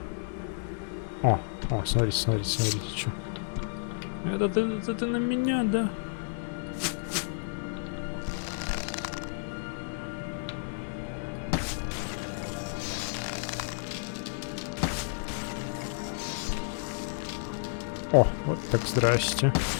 О, смотрите, что. Это на меня, да? О, вот так, здрасте.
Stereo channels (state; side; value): silent; right; digital silence